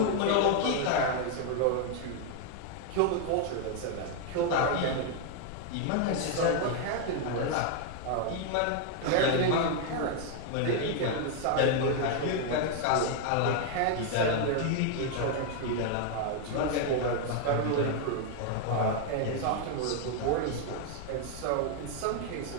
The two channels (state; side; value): different; both; correlation 0.00